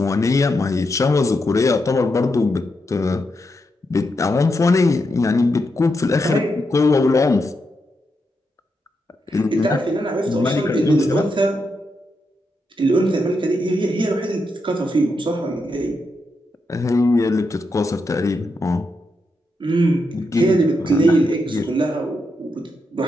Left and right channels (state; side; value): normal; both; correlation 0.83